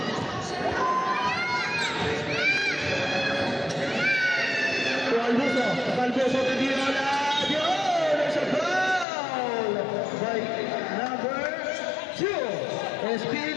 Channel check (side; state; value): right; drops out; at 9.1 s